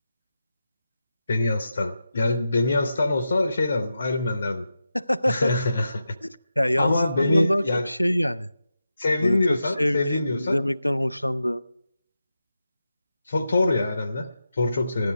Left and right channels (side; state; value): both; inverted; correlation -0.89